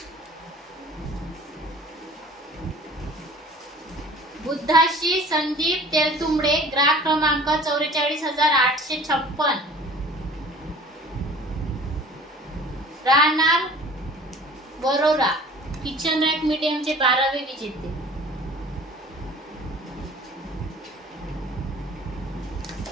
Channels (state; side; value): normal; both; correlation 0.46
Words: बुद्धाशी संदीप तेलतुंबडे, ग्राहक क्रमांक 44,856, राहणार वरोरा, किचन रॅक मीडियमचे 12वे विजेते.